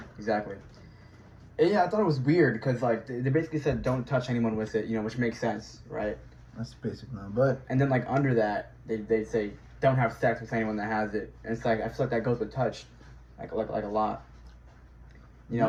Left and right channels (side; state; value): both; identical; correlation 1.00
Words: Exactly. And yeah, I thought it was weird because like they basically said don't touch anyone with it, you know, which makes sense, right? That's basic now, but And then like under that, they say don't have sex with anyone that has it. And it's like I feel like that goes with touch, like a lot. You